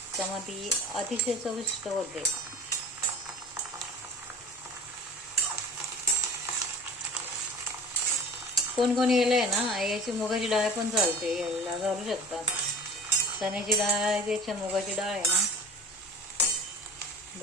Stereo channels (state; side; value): normal; both; correlation 0.40